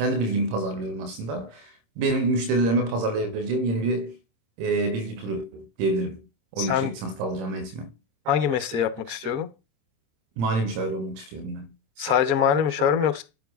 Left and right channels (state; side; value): late; left; 26 ms